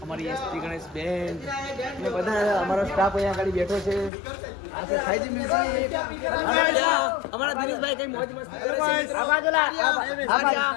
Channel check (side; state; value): right; drops out; at 4.1 s